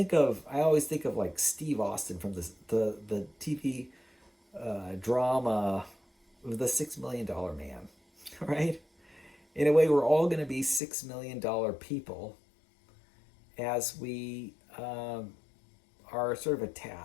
always think of like Steve Austin from the TV drama, The $6 Million Man, right? In a way, we're all going to be $6 million people as we are sort of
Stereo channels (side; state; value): right; drops out; at 10.8 s